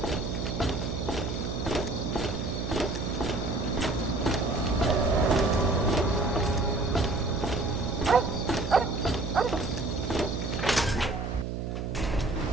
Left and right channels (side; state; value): right; noise; hum, 4 dB below the sound